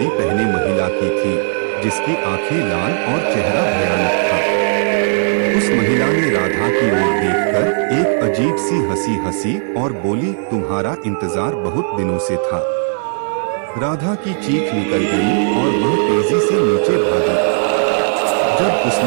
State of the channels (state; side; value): silent; left; 64 dB below the other